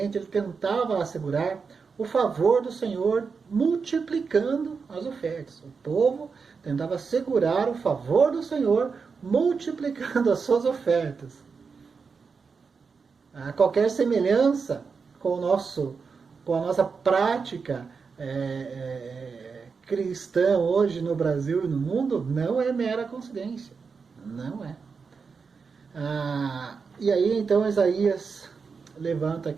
ele tentava assegurar o favor do Senhor multiplicando as ofertas. O povo tentava assegurar o favor do Senhor multiplicando as suas ofertas. Qualquer semelhança com a nossa prática cristã hoje no Brasil e no mundo não é mera coincidência. Não é. E aí então Isaías levanta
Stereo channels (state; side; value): quieter; left; 5.3 dB